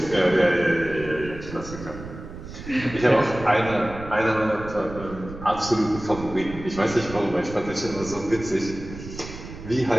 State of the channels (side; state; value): right; noise; rumble, 12 dB below the sound